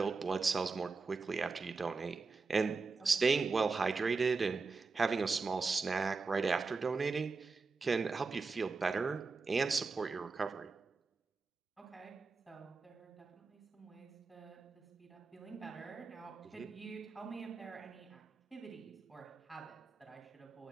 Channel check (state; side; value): quieter; left; 4.3 dB